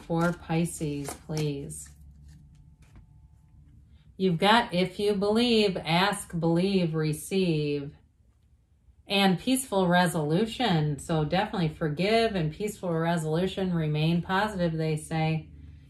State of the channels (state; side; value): identical; both; correlation 1.00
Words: Pisces, please. You've got, if you believe, ask, believe, receive, and peaceful resolution. So definitely forgive and peaceful resolution. Remain positive, they say.